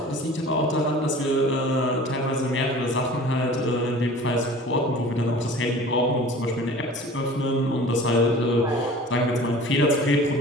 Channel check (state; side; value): normal; both; correlation 0.43